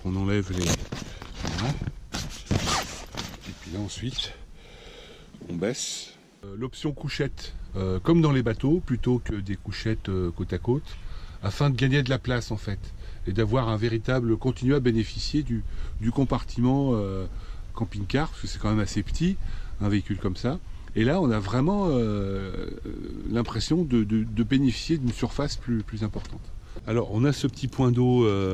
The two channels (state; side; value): identical; both; correlation 1.00